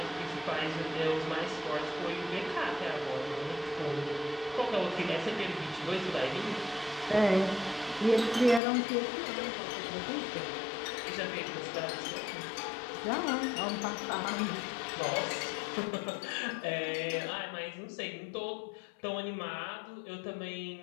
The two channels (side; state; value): right; drops out; at 8.6 s